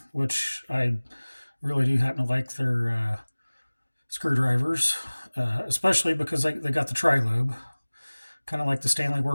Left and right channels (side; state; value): both; inverted; correlation -1.00